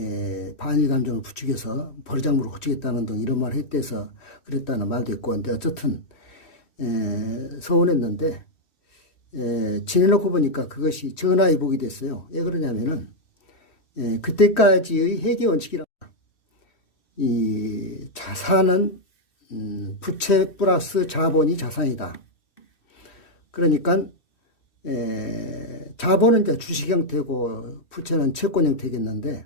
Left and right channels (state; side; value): late; right; 3.1 ms